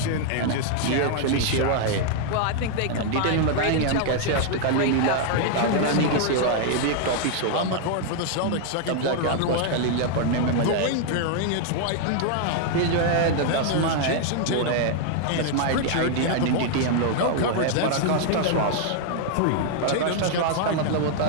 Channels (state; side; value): different; both; correlation 0.00